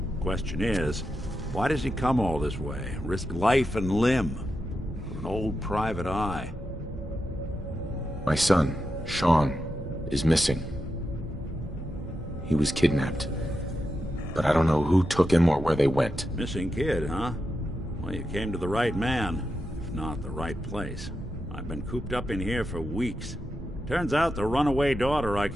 Question is, why does he come all this way? Risk life and limb for an old private eye? My son, Sean, is missing. He was kidnapped. But I don't know who took him or where they went. Missing kid, huh? Well, you came to the right man, if not the right place. I've been cooped up in here for weeks. Turns out the runaway daughter I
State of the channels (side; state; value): both; normal; correlation 0.88